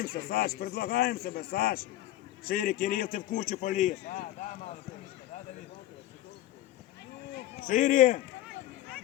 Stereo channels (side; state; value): right; quieter; 14.5 dB